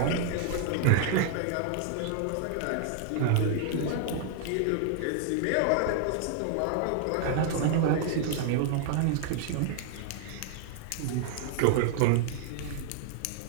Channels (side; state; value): both; different; correlation 0.00